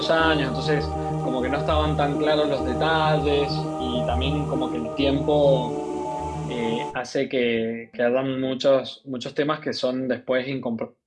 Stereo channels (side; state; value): both; identical; correlation 1.00